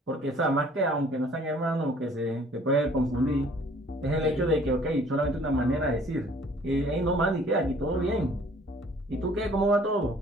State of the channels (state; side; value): normal; both; correlation 0.55